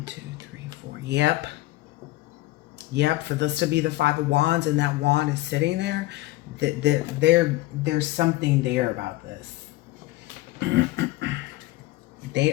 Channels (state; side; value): quieter; right; 18.2 dB